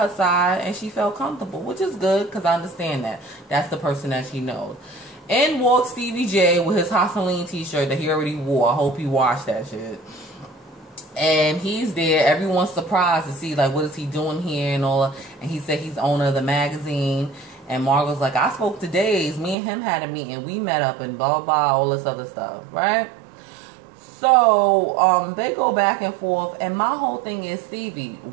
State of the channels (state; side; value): drops out; left; at 19.6 s